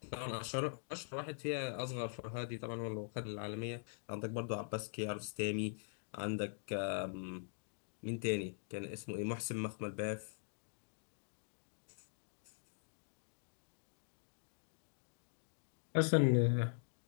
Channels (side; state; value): right; silent; digital silence